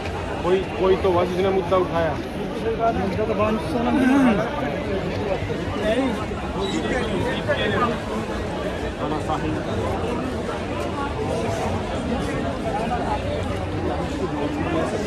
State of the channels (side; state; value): both; identical; correlation 1.00